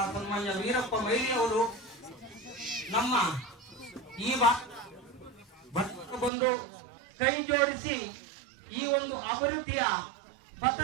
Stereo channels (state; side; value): drops out; left; at 6.3 s